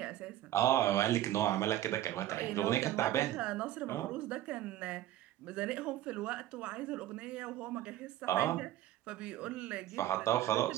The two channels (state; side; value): quieter; left; 13.5 dB